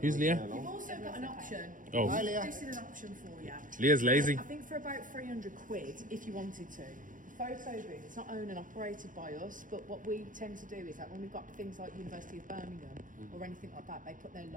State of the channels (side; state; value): left; late; 0.38 ms